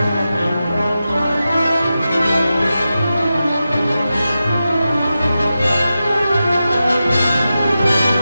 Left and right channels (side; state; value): both; inverted; correlation -0.92